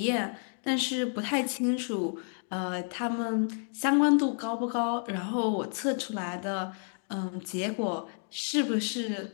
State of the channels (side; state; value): right; silent; 58 dB below the other